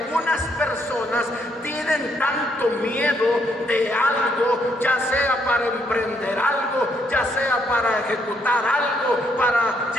personas tienen tanto miedo de algo, ya sea para emprender algo, ya sea para ejecutar algo, para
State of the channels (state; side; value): normal; both; correlation 0.72